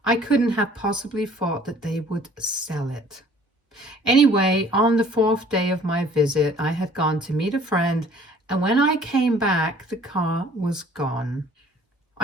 I couldn't have possibly thought that they would sell it. Anyway, on the fourth day of my visit, I had gone to meet a friend, and when I came back, the car was gone.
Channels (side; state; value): both; normal; correlation 0.54